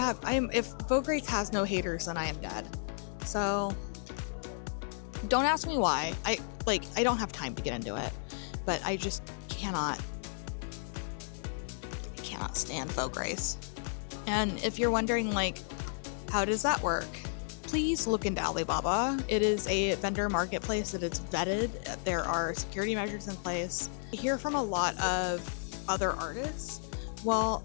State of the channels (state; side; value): silent; right; digital silence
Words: Vogue Race has no haters, then I am dead. So don't ask me why. I don't have time to get into it, but I just cannot stand Vogue Race. And if you're wondering like, how does that work? Please look into Alibaba. It is a vendor marketplace that is vetted. There are security measures in place. I hear from a lot of other artists, well,